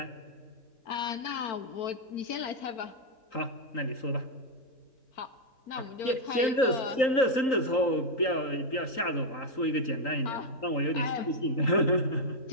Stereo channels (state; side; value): late; right; 3.8 ms